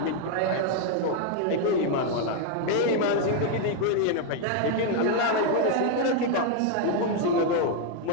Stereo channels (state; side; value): different; both; correlation 0.00